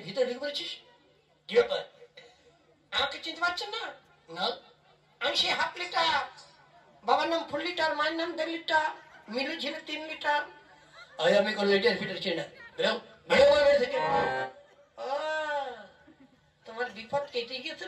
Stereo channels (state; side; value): identical; both; correlation 1.00